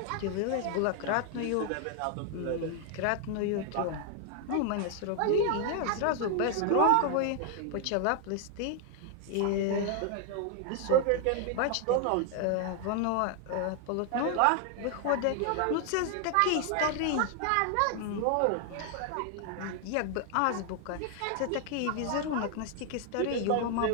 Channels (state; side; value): different; both; correlation 0.00